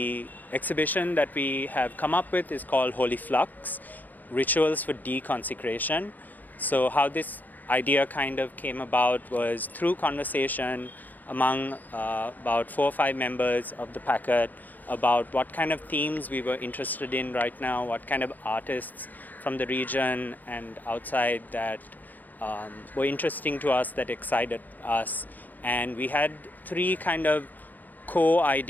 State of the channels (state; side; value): late; right; 0.084 ms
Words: exhibition that we have come up with is called Holy Flux Rituals for Deconsecration. So, how this idea kind of came about was through conversation among about 4 or 5 members of the packet about what kind of themes we were interested in right now, what kind of artists from the region and outside that were interesting to us, that excited us. And we had 3 kind of core